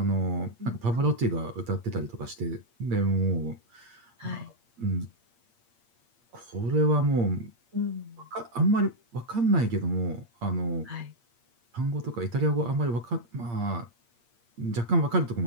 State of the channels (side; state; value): left; late; 8.6 ms